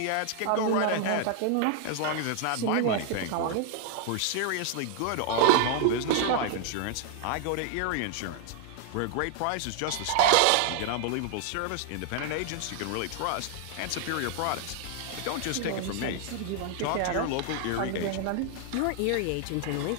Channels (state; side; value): different; both; correlation 0.00